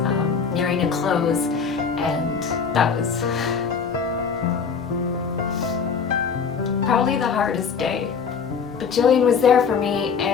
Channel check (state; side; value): quieter; right; 6.1 dB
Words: nearing a close, and that was probably the hardest day. But Jillian was there for me